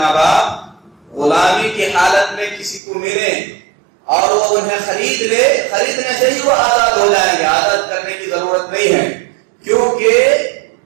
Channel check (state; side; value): drops out; left; at 2.8 s